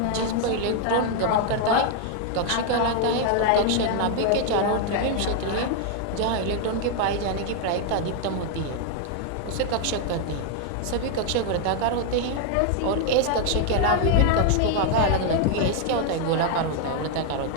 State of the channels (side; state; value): both; different; correlation 0.00